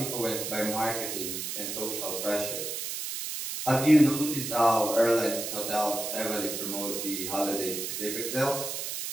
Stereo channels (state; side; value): noise; right; hiss, 4 dB below the sound